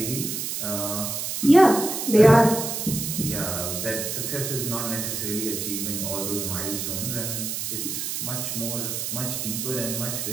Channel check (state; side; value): noise; right; hiss, 3 dB below the sound